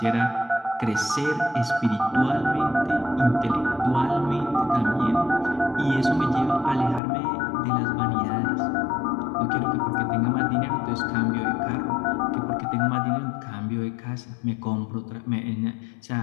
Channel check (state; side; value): drops out; right; at 7.0 s